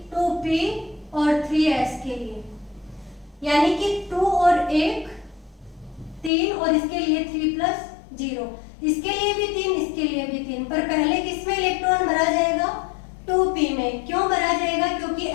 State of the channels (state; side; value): drops out; right; at 6.3 s